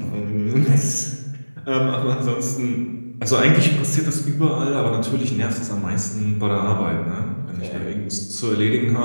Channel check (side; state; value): both; inverted; correlation -1.00